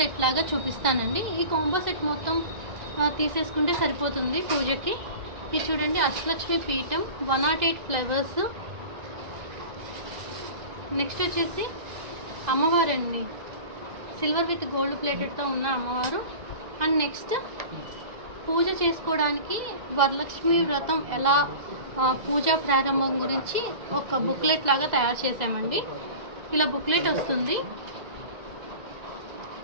లాగా చూపిస్తానండి. ఈ కాంబో సెట్ మొత్తం తీసేసుకుంటే సరిపోతుంది పూజకి. ఇది చూడండి, అష్టలక్ష్మి పీఠం 108 ఫ్లవర్స్. నెక్స్ట్ వచ్చేసి అమ్మవారు అండి, సిల్వర్ విత్ గోల్డ్ ప్లేటెడ్తో ఉన్న అమ్మవారు. అండ్ నెక్స్ట్ పూజ చేసుకోవడానికి వరలక్ష్మి వ్రతం ఎలా పూజా ప్రారంభం గురించి ఒక బుక్లెట్ లాగా తయారు చేసామండి. ఇలా బుక్లెట్ వస్తుంది.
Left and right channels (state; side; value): late; left; 2.0 ms